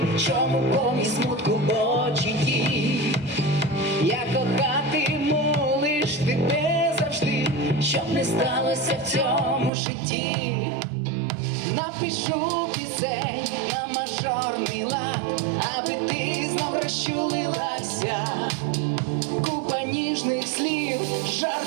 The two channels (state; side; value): drops out; left; at 9.7 s